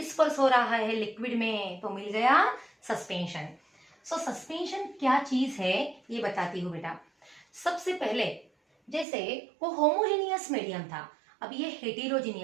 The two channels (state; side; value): drops out; left; at 9.1 s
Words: हो रहा है लिक्विड में, तो मिल गया सस्पेंशन. सो सस्पेंशन क्या चीज है ये बताती हूँ बेटा. सबसे पहले जैसे वो होमोजेनियस मीडियम था, अब ये